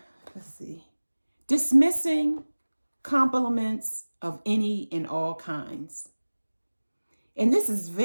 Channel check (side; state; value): both; inverted; correlation -1.00